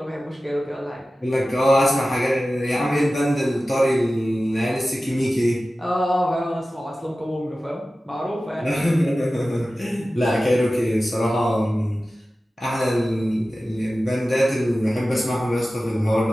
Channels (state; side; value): normal; both; correlation 0.95